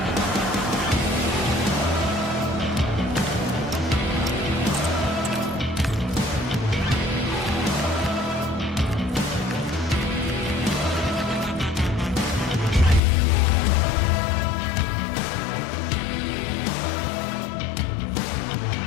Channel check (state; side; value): drops out; right; at 13.0 s